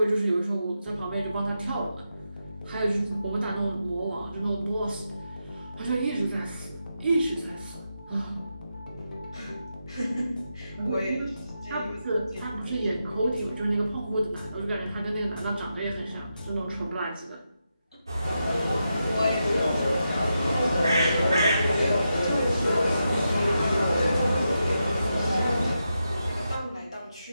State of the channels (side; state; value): both; inverted; correlation -0.86